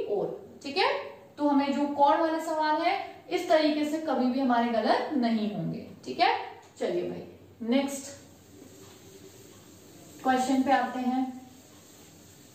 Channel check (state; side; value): identical; both; correlation 1.00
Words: ओर, ठीक है। तो हमें जो कोण वाले सवाल है इस तरीके से कभी भी हमारे गलत नहीं होंगे, ठीक है। चलिए भाई नेक्स्ट क्वेश्चन पे आते हैं।